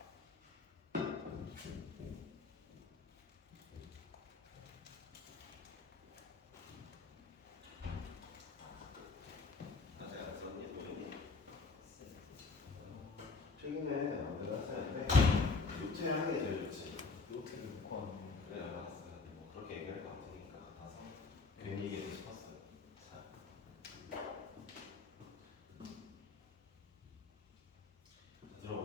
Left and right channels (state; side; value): quieter; right; 4.2 dB